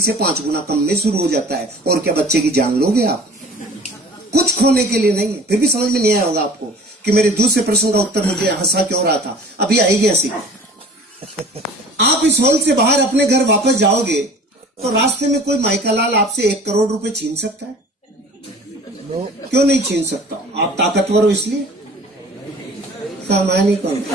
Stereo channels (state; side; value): normal; both; correlation 0.46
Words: से 5 गुना कम में शुरू हो जाता है। और क्या बच्चे की जान लोगे आप? कुछ खोने के लिए नहीं है। फिर भी समझ में नहीं आया होगा आपको कि मेरे दूसरे प्रश्न का उत्तर मुझे हंसा क्यों रहा था। अभी आएगी हंसी। आप इस हॉल से बाहर अपने घर वापस जाओगे तो रास्ते में कोई माइकालाल आपसे 1 करोड़ रुपए छीन सकता है? क्यों नहीं छीन सकता? आप ताकतवर हो इसलिए? सामान्य कौन?